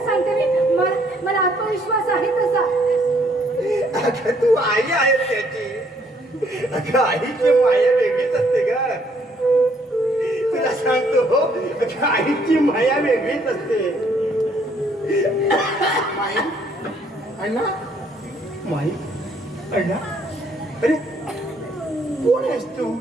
सांगते मी, मला आत्मविश्वास आहे तसा. अगं तू आई आहे त्याची. अगं आईची माया वेगळीच असते ग. तुला सांगतो हो, अगं आईची माया वेगळीच असते. माई अण्णा, माई अण्णा, अरे कोण आहेस तू?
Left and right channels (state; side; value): normal; both; correlation 0.66